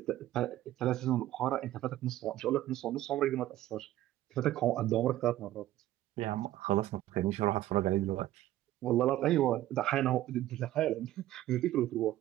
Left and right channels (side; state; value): left; quieter; 14.3 dB